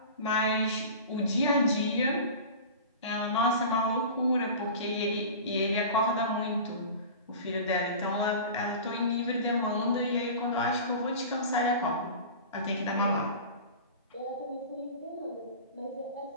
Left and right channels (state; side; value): inverted; both; correlation -0.35